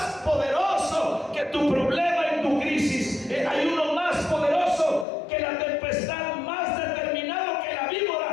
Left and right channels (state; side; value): drops out; right; at 5.1 s